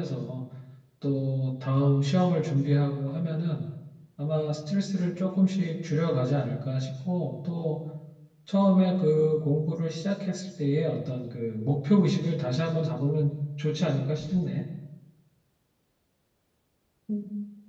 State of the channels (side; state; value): both; identical; correlation 1.00